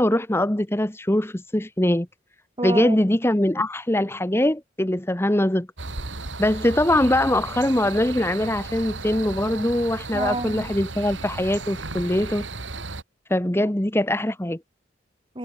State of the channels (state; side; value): normal; both; correlation 0.83